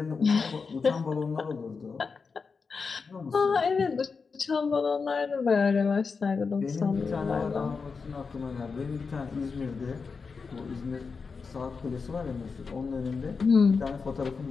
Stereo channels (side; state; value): right; quieter; 5.0 dB